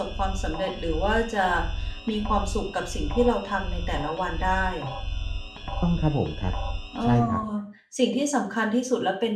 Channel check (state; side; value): identical; both; correlation 1.00